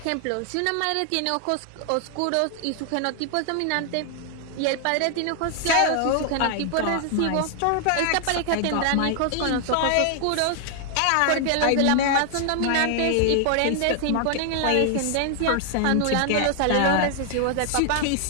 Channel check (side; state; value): both; different; correlation 0.00